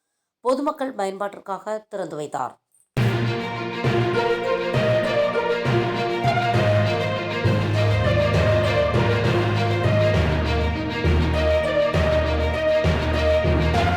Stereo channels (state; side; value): identical; both; correlation 1.00